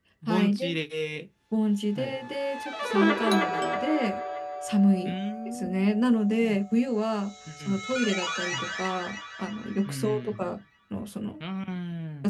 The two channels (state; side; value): identical; both; correlation 1.00